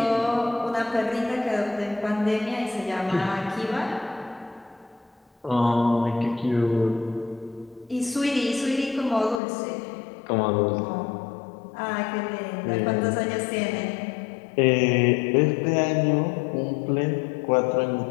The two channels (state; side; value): drops out; right; at 9.4 s